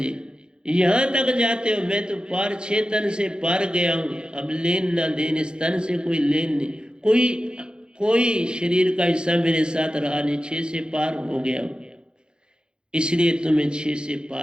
यहां तक जाते हो। मैं तो पार 6 तन से पार गया हूं। अब लेन ना देन, इस तन से कोई लेन नहीं। कोई शरीर का हिस्सा मेरे साथ रहा नहीं। 6 से पार हो गया हूं। इसलिए तुम्हें 6 से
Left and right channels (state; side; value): late; left; 0.049 ms